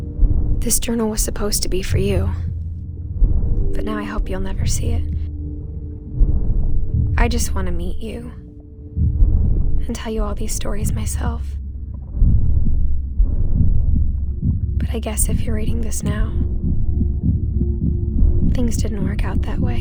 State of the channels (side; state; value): both; identical; correlation 1.00